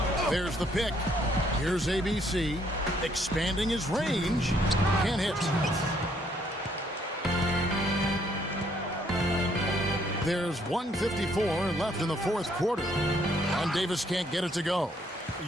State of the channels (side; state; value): both; normal; correlation 0.68